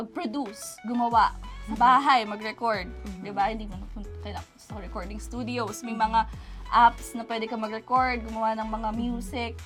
gumawa sa bahay, mag-record. Di ba? Hindi mo kailangan sa recording studios. May mga apps na pwede ka mag-record, gumawa ng mga music.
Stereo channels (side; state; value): both; identical; correlation 1.00